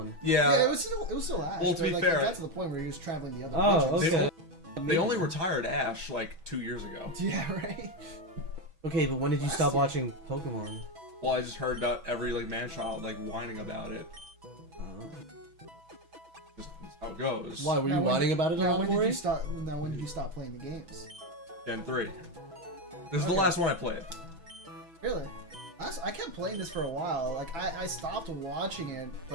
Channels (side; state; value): left; late; 6.1 ms